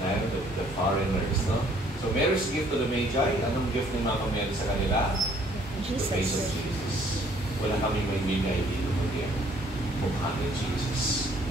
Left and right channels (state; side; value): normal; both; correlation 0.61